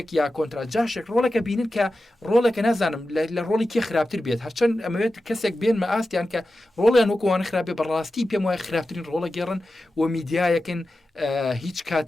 یا کۆنترا جاشێک ڕۆڵەکە بینن کە ڕۆڵەکە نازانم لە ڕۆڵی کێ خراپتر بێت هەرچەند ئەمەوێت کەسێک بێن مە ئاستیان کە ڕۆڵیان وەکووانە خراپێ بەڕاستی پێم وایە خراپترین ڕۆڵە گێڕن و میدیایەکن هیچ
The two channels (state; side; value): normal; both; correlation 0.92